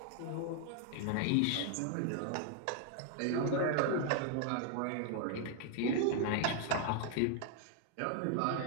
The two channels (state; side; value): different; both; correlation 0.00